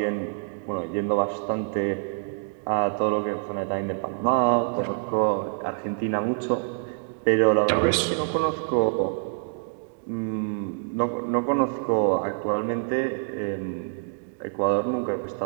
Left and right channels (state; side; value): silent; left; digital silence